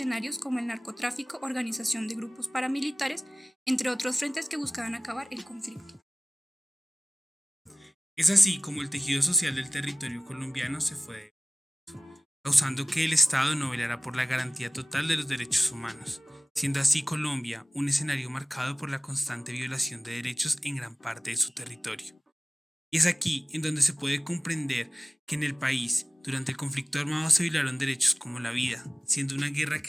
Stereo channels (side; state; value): both; normal; correlation 0.95